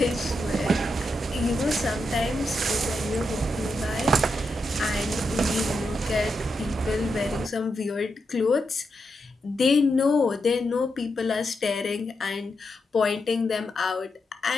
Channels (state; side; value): normal; both; correlation 0.85